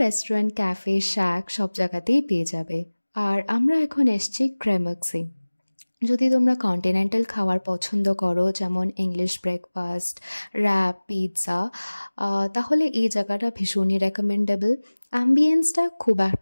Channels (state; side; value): inverted; both; correlation -1.00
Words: রেস্টুরেন্ট, ক্যাফে, শ্যাক সব জায়গাতেই পেয়ে যাবে। আর আমরা এখন এসছি ক্রেমাক্সে। যদি তোমরা কন্টিনেন্টাল খাবার পছন্দ করো যেমন ইংলিশ ব্রেকফাস্ট, র্যাপ, পিৎজা, তাহলে এই জায়গাটা ভীষণই রেকমেন্ডেবল। অ্যাম্বিয়েন্সটা খুব